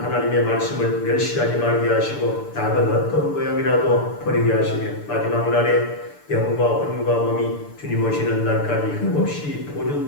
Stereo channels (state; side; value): late; right; 6.8 ms